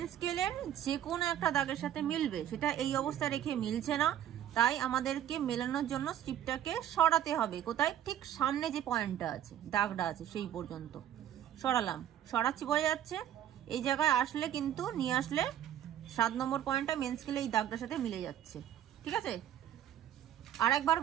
স্কেলের যে কোনো একটা দাগের সাথে মিলবে। সেটা এই অবস্থায় রেখে মিলছে না, তাই আমাদেরকে মেলানোর জন্য স্ট্রিপটাকে সরাতে হবে। কোথায়? ঠিক সামনে যে পয়েন্টটা আছে, দাগটা আছে, সেই পর্যন্ত সরালাম। সরাচ্ছি, বোঝা যাচ্ছে? এই জায়গায় আসলে কিন্তু নিয়ে আসলে 7 নম্বর পয়েন্টটা মেন স্কেলে এই দাগটার সাথে মিলে যাচ্ছে। ঠিক আছে, আর একবার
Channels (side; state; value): left; quieter; 11.0 dB